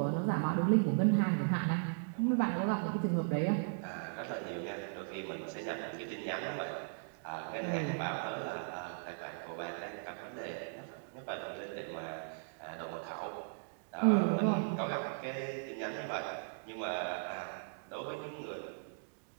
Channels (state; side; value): silent; left; digital silence